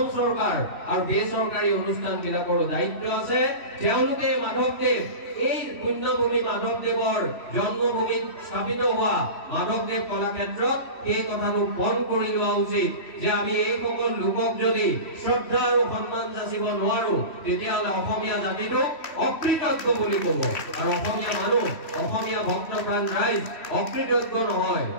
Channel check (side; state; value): right; late; 3.1 ms